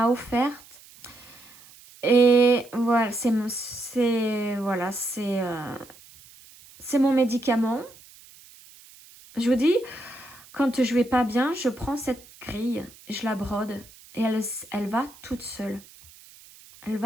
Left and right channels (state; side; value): noise; right; hiss, 23 dB below the sound